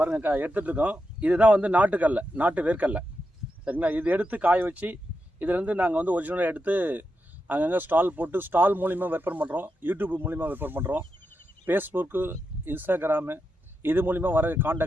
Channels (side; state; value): both; normal; correlation 0.86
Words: எடுத்துகிட்டு இருக்கோம். இதுதான் வந்து நாட்டு வேர்க்கடலை, சரிங்களா? இது எடுத்து காய வச்சு இதுலேருந்து நாங்கள் வந்து ஒரிஜினலாக எடுத்து அங்கங்கே ஸ்டால் போட்டு ஸ்டால் மூலிமா விற்பனை பண்ணுறோம். யூடியூப் மூலிமா விற்பனை பண்ணுறோம். ஃபேஸ்புக்கு, இன்ஸ்டாகிராமு இது மூலிமா வர